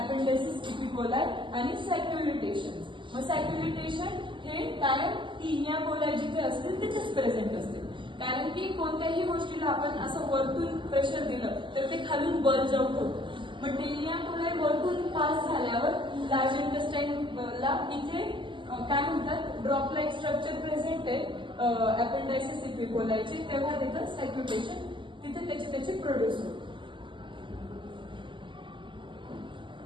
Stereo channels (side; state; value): left; late; 0.24 ms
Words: अपेंडायसिस इपिकोलाई आणि सॅक्युलिटेशन्स. मग सॅक्युलिटेशन हे कायम टेनिया कोलाई जिथे असतील तिथेच प्रेझेंट असते. कारण की कोणत्याही गोष्टीला आपण असं वरतून प्रेशर दिलं तर ते खालून बल्ज आउट होतं. मग टेनिया कोलाई वरतून पास झाल्यावर लार्ज इंटेस्टाइनला इथे काय म्हणतात ड्रॉप लाईक स्ट्रक्चर प्रेझेंट आहे अपेंडायसिस इपिकोलायचे, तेव्हा तिथं सॅक्युलेशन तिथे त्याचे प्रोड्यूस होते.